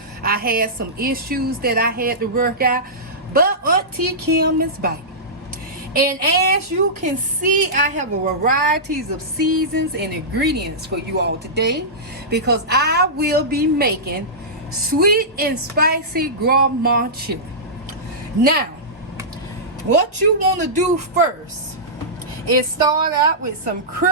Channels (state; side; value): normal; both; correlation -0.16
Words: I had some issues that I had to work out, but Auntie Kim is back. And as you can see, I have a varieties of seasons and ingredients for you all today because I will be making sweet and spicy gourmand chili. Now, what you want to do first is start out with some